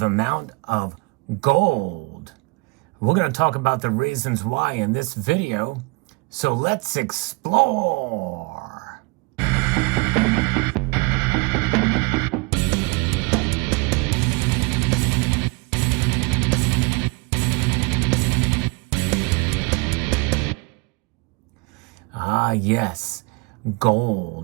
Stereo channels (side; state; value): left; quieter; 27.8 dB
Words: amount of gold. We're going to talk about the reasons why in this video, so let's explore. Yes,